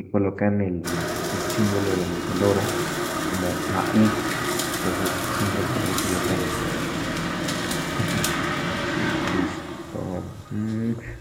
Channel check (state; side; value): identical; both; correlation 1.00